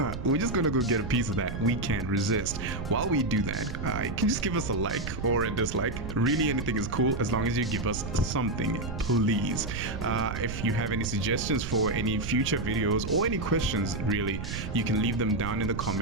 we're just gonna go get a piece of that. We can't resist. While we do that, you can just give us a like or a dislike. Really, anything is cool as long as you give us something, please. If you have any suggestions for any future videos or any questions, really, you can leave them down in the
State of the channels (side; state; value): right; noise; rumble, 6 dB below the sound